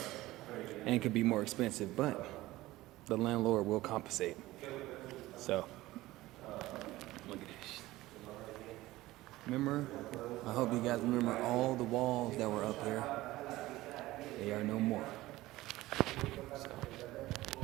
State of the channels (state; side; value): quieter; left; 17.7 dB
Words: and it could be more expensive, but the landlord will compensate. So look at this. Remember, I hope you guys remember all the walls that were up here. They are no more.